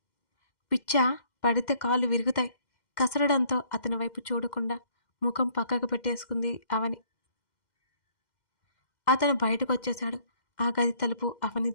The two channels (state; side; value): late; right; 2.1 ms